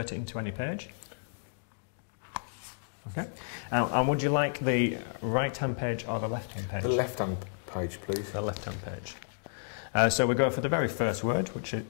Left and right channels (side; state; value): right; silent; digital silence